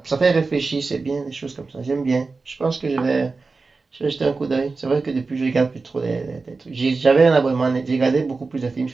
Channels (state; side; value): quieter; left; 4.0 dB